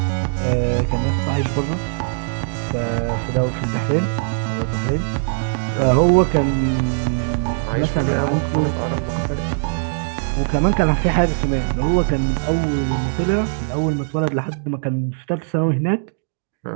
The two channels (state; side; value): silent; left; digital silence